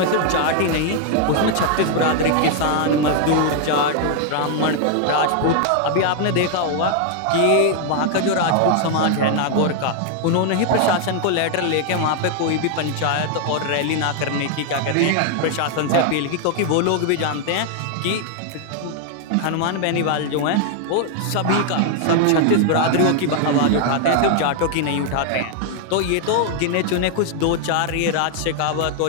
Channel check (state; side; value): different; both; correlation 0.00